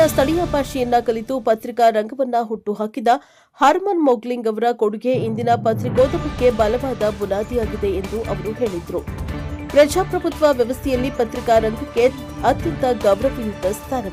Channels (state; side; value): identical; both; correlation 1.00